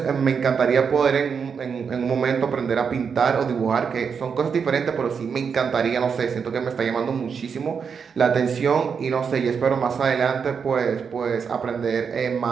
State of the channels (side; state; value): left; quieter; 6.3 dB